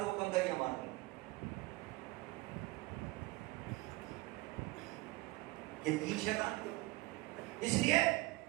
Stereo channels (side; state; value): left; quieter; 20.5 dB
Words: کو کم کریے مار. یہ 3 شیطان کیوں؟ اس لیے